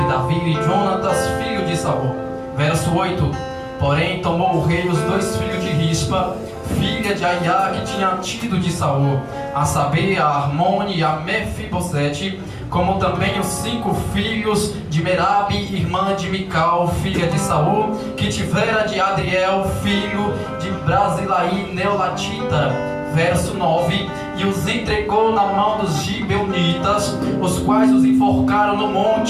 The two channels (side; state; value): both; identical; correlation 1.00